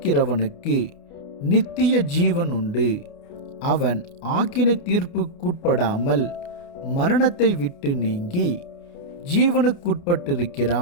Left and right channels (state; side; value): late; right; 29 ms